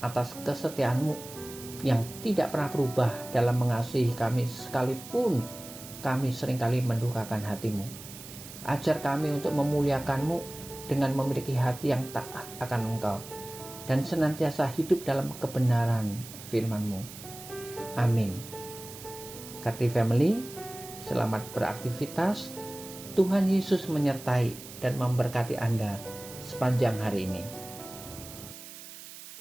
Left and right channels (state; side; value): noise; right; hiss, 14 dB below the sound